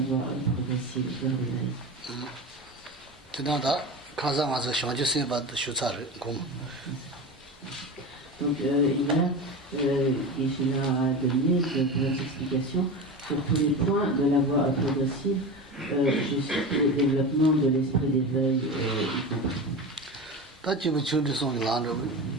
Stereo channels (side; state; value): both; normal; correlation 0.27